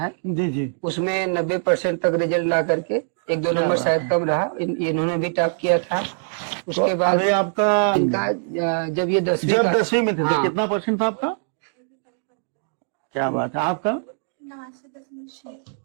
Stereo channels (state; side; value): silent; left; digital silence